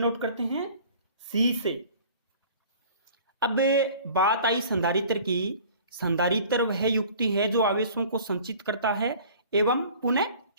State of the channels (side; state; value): both; inverted; correlation -0.48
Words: करते हैं? C से। अब बात आई संधारित्र की। संधारित्र वह युक्ति है जो आवेशों को संचित करता है एवं पुनः